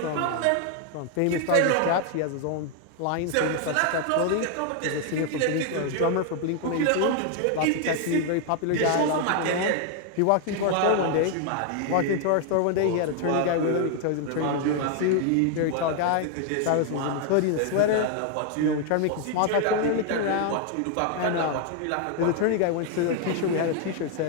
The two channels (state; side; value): different; both; correlation 0.00